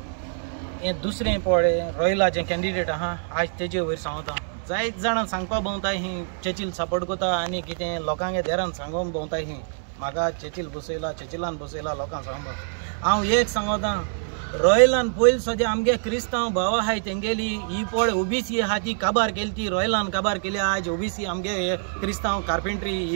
हें दुसरें पळय रॉयलाचें कॅन्डिडेट आहा आज तेजे वयर सांगता जायत जाणां सांगपा भोंवताय ही चर्चिल सपोर्ट करता आनी कितें लोकांगे देरान सांगून भोंवताय ही म्हाका चर्चिल चर्चिलान बसयला लोकांक सांगपा हांव एक सांगता रॉयलान पयलीं सद्या आमगे क्रिस्तांव भाव आहाय तेंगेली ही पळ ओबीसी आहा ती काबार केली ती रॉयलान काबार केली आज ओबीसी आमगे क्रिस्तांव कार्पेंट्री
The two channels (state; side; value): silent; left; 62 dB below the other